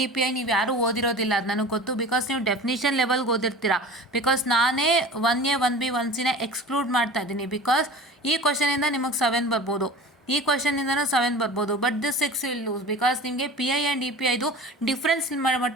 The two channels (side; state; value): both; normal; correlation 0.38